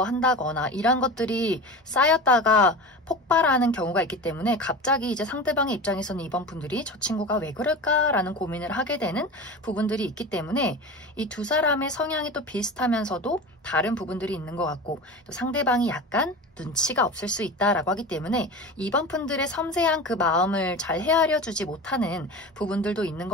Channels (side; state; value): both; normal; correlation 0.30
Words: 이런 것들이 쌓였다가 폭발하는 경우가 있기 때문에 갑자기 이제 상대방의 입장에서는 이번 분들이 저 친구가 왜 그럴까라는 고민을 하게 되는 부분들이 있기 때문에 이 두 사람의 성향이 또 비슷하면서도 다른 부분들이 있는 것 같고 또 상대방이 약간 눈치가 없을 수 있다라고 하기 때문에 이번 분들의 섬세한 그 마음을 잘 헤아려 주지 못하는 부분들도 있는